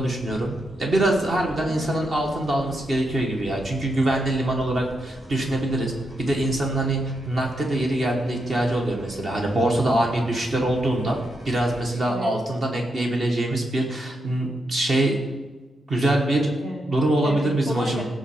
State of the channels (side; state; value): both; normal; correlation 0.83